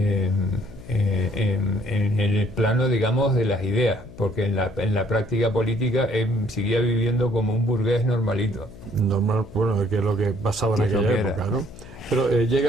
el plano, digamos, de las ideas, porque en la práctica política seguía viviendo como un burgués normalito. Normal, bueno, que es lo que pasaba en aquella época, ¿no? Pero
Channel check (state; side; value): noise; left; hum, 18 dB below the sound